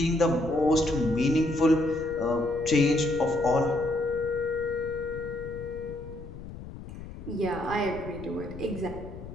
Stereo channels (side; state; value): left; noise; rumble, 13 dB below the sound